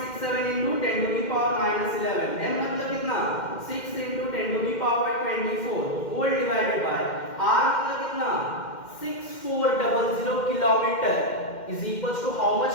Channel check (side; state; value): right; late; 2.1 ms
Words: into 10 to the power minus 11, m मतलब कितना 6 into 10 to the power 24 whole divided by r मतलब कितना 6400 kilometre is equals to how much